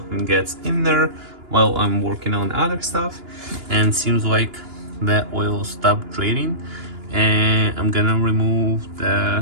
gets in there while I'm working on other stuff, and seems like the oil stopped draining, and I'm gonna remove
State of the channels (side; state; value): left; late; 2.9 ms